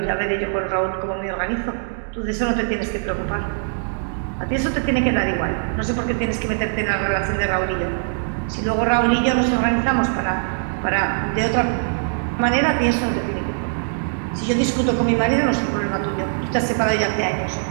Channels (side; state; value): left; silent; digital silence